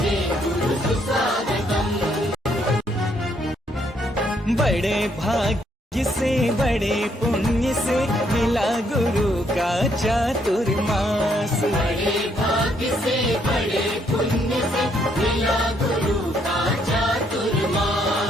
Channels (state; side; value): normal; both; correlation 0.71